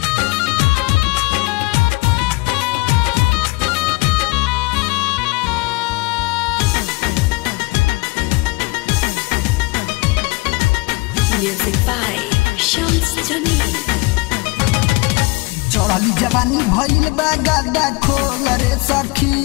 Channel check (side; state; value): right; quieter; 24.6 dB